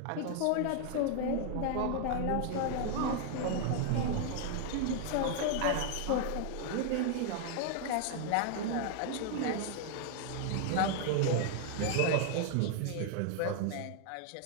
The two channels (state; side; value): different; both; correlation 0.00